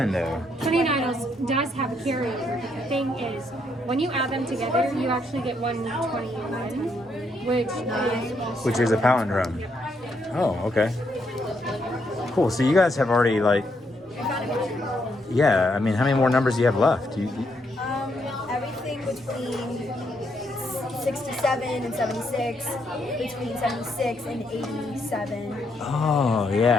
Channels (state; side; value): normal; both; correlation 0.75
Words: though? 29 does have a carryover, but the thing is, when you add them together, you actually get 121, Which is a palindrome. Oh, okay. Cool, so you guys have already like, yeah, I mean, how many more numbers do you have left? Everything between 67 and 76, between 76 and 87, Oh,